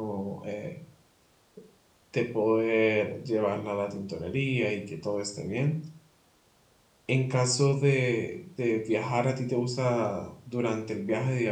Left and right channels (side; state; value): both; identical; correlation 1.00